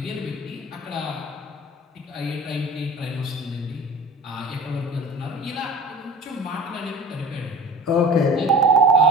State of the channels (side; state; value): both; normal; correlation 0.39